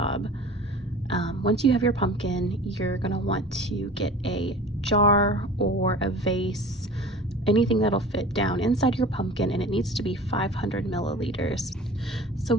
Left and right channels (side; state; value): both; normal; correlation 0.41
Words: Once you have your pumpkin, you're going to want to get a jar or a vase, anything that'll fit down inside your pumpkin, and it needs to be 500 milliliters. So